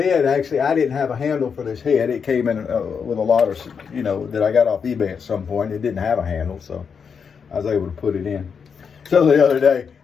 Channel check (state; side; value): quieter; right; 6.3 dB